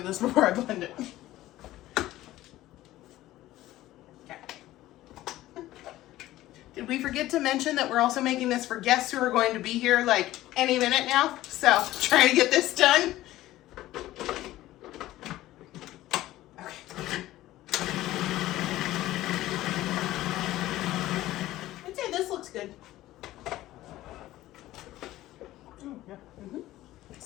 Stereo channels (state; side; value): quieter; right; 15.6 dB